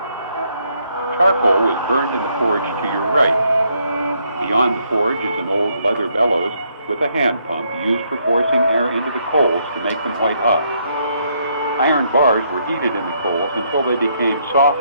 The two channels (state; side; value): inverted; both; correlation -0.72